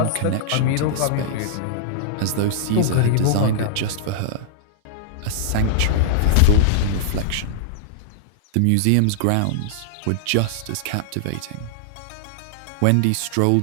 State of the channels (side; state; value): both; different; correlation -0.01